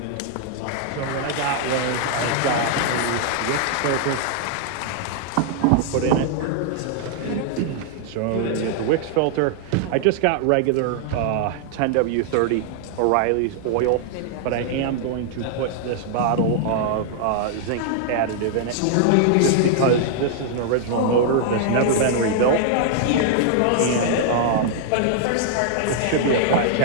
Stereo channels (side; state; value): both; different; correlation -0.01